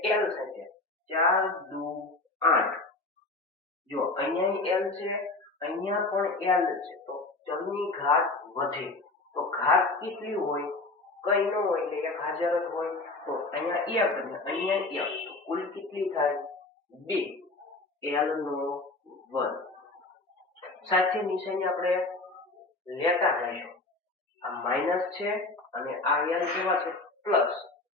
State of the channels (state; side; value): quieter; right; 3.2 dB